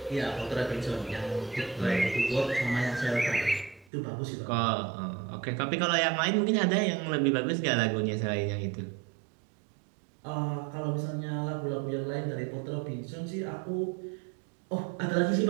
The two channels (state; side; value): drops out; left; at 3.9 s